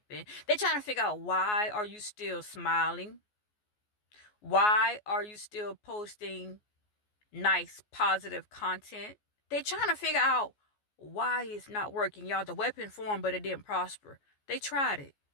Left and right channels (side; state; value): right; late; 14 ms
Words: They're trying to figure out, why are you still smiling? Why are you still posting nice, positive content? They're trying to figure out why it's not working. Y'all, the weapon formed, but it didn't prosper. They tried it.